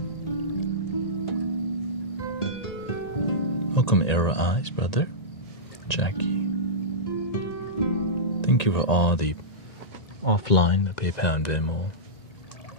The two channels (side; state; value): right; late; 1.8 ms